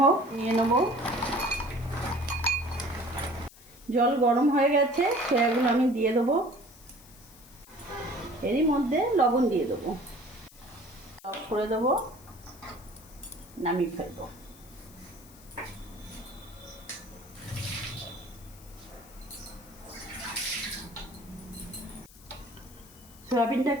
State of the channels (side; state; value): left; noise; hiss, 22 dB below the sound